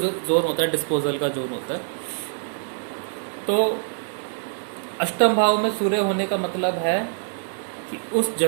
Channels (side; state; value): left; silent; digital silence